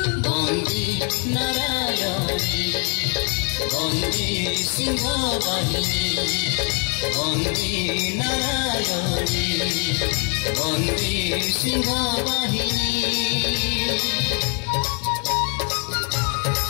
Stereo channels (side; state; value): right; quieter; 38.4 dB